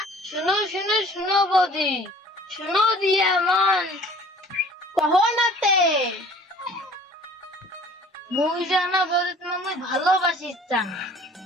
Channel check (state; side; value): normal; both; correlation 0.50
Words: শুনো শুনো শুনো বৌদি, শুনো দিয়া মন কহো নাতে মুই জানা বৌদি, তোমাকে মুই ভালোবাসি চান।